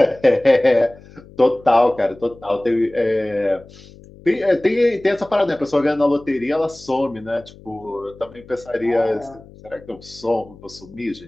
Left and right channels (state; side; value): noise; left; hum, 22 dB below the sound